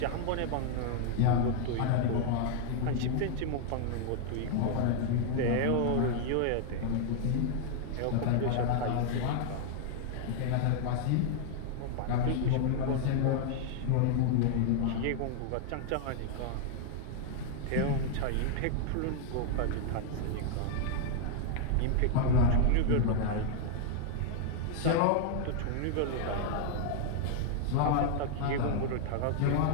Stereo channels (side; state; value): both; different; correlation 0.00